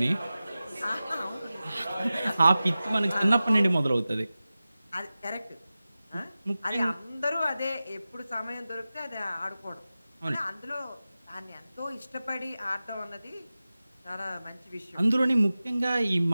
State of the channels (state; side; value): inverted; both; correlation -0.96